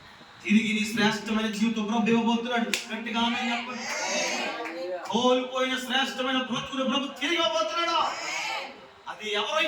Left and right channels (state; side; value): identical; both; correlation 1.00